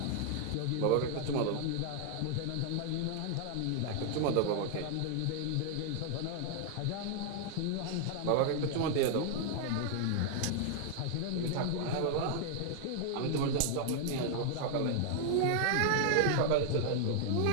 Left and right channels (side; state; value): both; different; correlation 0.00